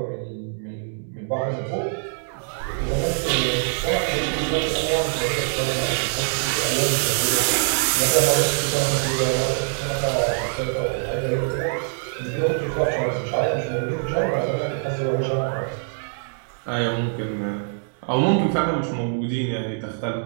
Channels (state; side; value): silent; left; digital silence